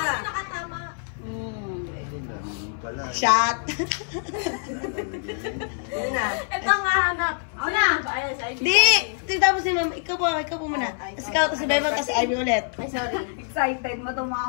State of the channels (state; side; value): silent; right; 57 dB below the other